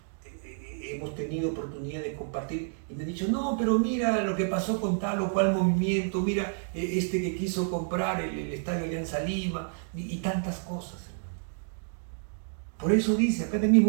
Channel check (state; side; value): silent; left; digital silence